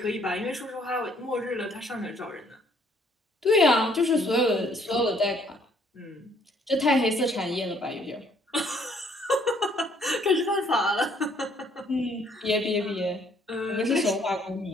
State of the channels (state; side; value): normal; both; correlation 0.64